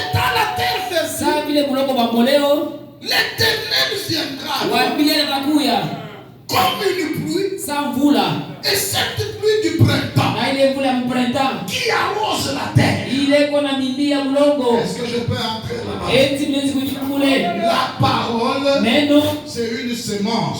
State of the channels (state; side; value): identical; both; correlation 1.00